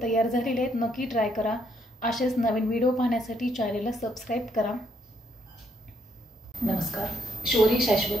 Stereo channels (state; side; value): normal; both; correlation 0.73